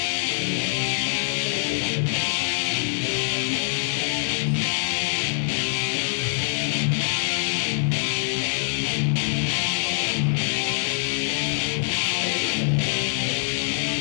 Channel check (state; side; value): silent; right; 62 dB below the other